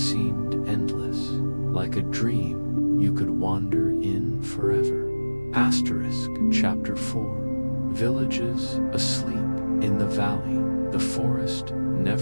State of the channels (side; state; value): both; inverted; correlation -1.00